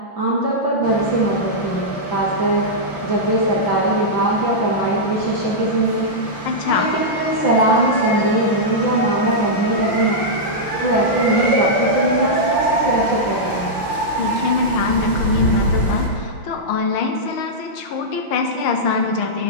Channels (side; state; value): right; late; 5.9 ms